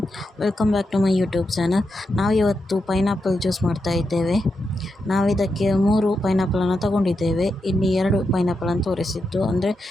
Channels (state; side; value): normal; both; correlation 0.86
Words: Welcome back to my YouTube channel. ನಾವಿವತ್ತು ಪೈನಾಪಲ್ ಜ್ಯೂಸ್ ಮಾಡ್ತಾ ಇದ್ದೇವೆ. ನಾವಿದಕ್ಕೆ 3 ಪೈನಾಪಲನ್ನು ತಗೊಂಡಿದ್ದೇವೆ. ಇಲ್ಲಿ 2 ಪೈನಾಪಲನ್ನು ತೋರಿಸಿದ್ದು ಅಂದರೆ